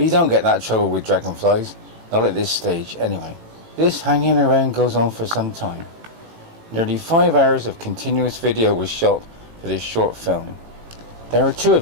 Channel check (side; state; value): left; late; 18 ms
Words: you don't get that trouble with dragonflies, not at this stage anyway. This hanging around goes on for some time. Nearly 5 hours of continuous video was shot for this short film. There are two